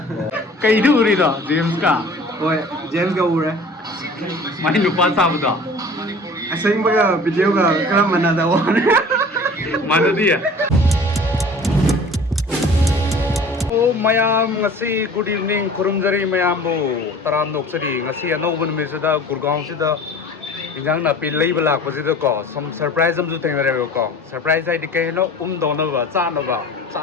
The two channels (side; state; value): both; normal; correlation 0.45